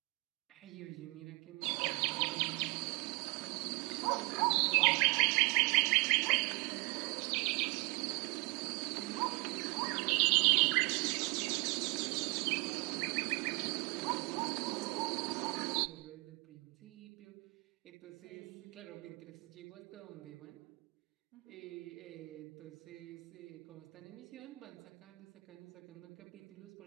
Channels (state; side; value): quieter; left; 28.6 dB